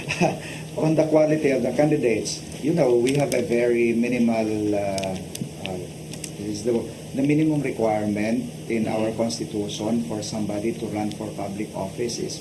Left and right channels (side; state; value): both; identical; correlation 1.00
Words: On the quality of the candidates, we have a very minimal, is the minimum requirement in our constitution for somebody to run for public office is